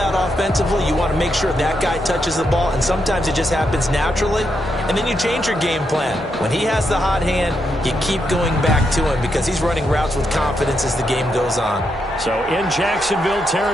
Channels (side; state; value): both; normal; correlation 0.81